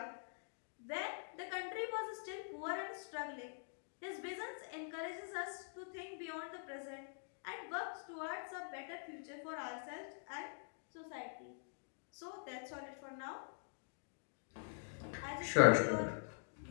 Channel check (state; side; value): silent; right; digital silence